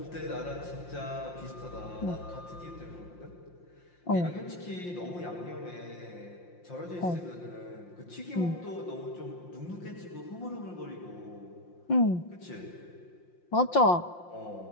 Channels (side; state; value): right; late; 5.7 ms